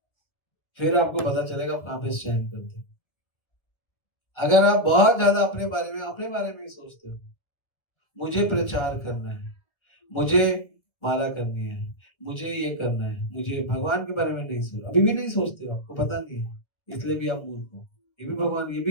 फिर आपको पता चलेगा आप कहां पे स्टैंड करते हो। अगर आप बहुत ज्यादा अपने बारे में ही सोचते हो, मुझे प्रचार करना है, मुझे माला करनी है, मुझे ये करना है, मुझे भगवान के बारे में नहीं सोच, अभी भी नहीं सोचते हो, आपको पता नहीं है, इसलिए भी आप मूर्ख हो। ये भी भगवान, ये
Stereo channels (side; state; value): right; late; 1.9 ms